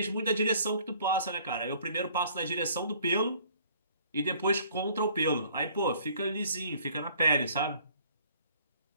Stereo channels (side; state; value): both; inverted; correlation -0.56